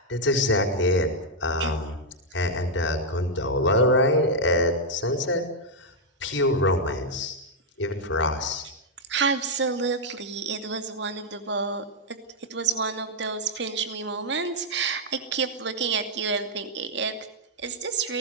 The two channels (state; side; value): normal; both; correlation -0.02